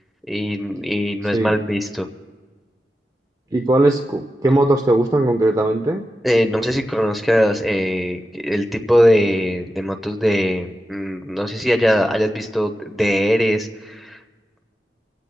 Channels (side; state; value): both; normal; correlation 0.91